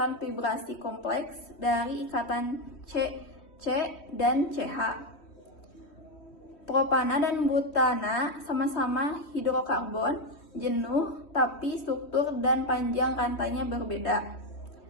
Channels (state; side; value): late; right; 3.1 ms